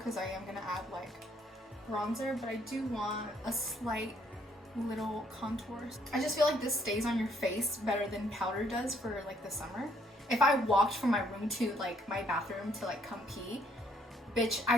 I am gonna add like bronzer, but I do want a slight little contour. I just feel like this stays on your face better than powder does for like the summer. If I walked from my room to like my bathroom to like come pee, bitch, I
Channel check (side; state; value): both; normal; correlation 0.67